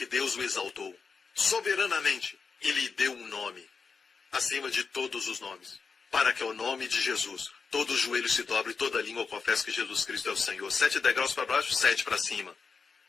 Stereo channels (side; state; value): right; quieter; 5.1 dB